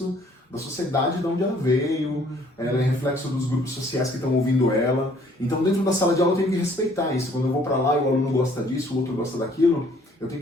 da sociedade de onde ela veio, ela é reflexo dos grupos sociais que estão ouvindo ela. Então, dentro da sala de aula, eu tenho que respeitar isso. Quando eu vou para lá e o aluno gosta disso, o outro gosta daquilo, eu tenho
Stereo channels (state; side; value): normal; both; correlation 0.60